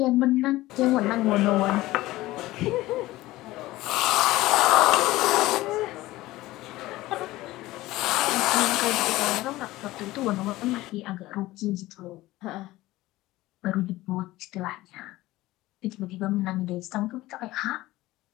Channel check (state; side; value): quieter; right; 17.6 dB